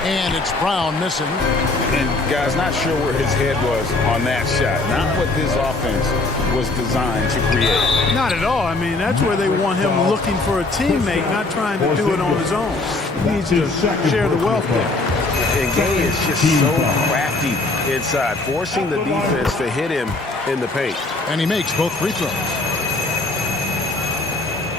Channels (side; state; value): right; quieter; 3.2 dB